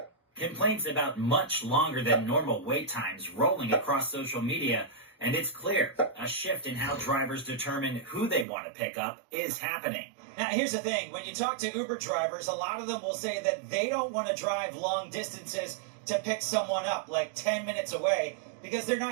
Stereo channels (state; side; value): drops out; left; at 8.5 s